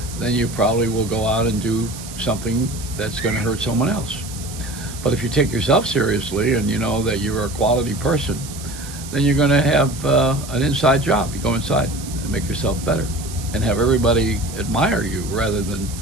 then you probably will go out and do something that's going to hurt someone else. But if you take yourself seriously and you know that you're a quality person, then you're going to have an inside job. You go inside and make yourself better and have everybody admire you rather than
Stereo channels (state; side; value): noise; right; hiss, 13 dB below the sound